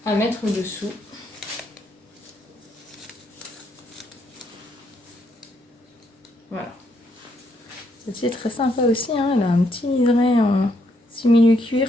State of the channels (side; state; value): both; normal; correlation 0.74